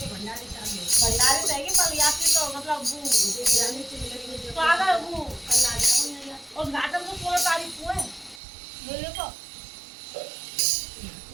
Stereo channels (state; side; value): drops out; left; at 8.4 s